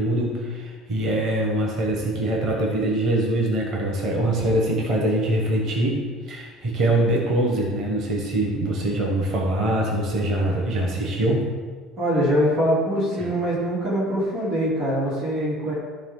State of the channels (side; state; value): both; normal; correlation 0.48